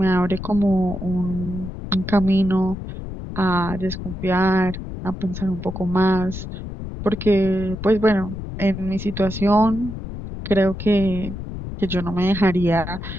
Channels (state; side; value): noise; left; rumble, 8 dB below the sound